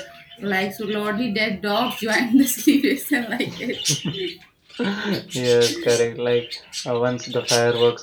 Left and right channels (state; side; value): identical; both; correlation 1.00